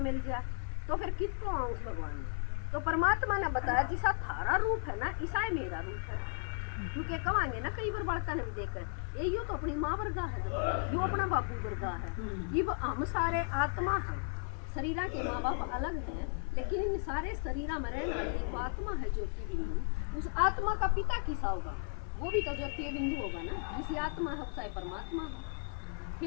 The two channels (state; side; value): silent; right; 54 dB below the other